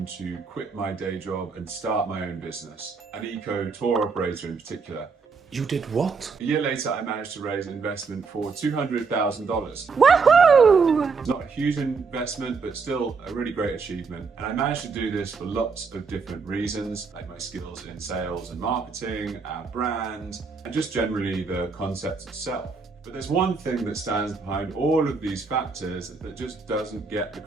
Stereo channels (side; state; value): left; quieter; 4.9 dB